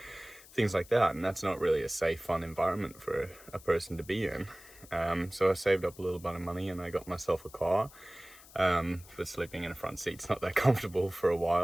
things like that, and that's not really a safe, fun environment for a person to be in. So I saved up a little bit of money and I got myself a car. For sleeping in a front seat's not that comfortable for a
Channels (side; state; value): left; noise; hiss, 21 dB below the sound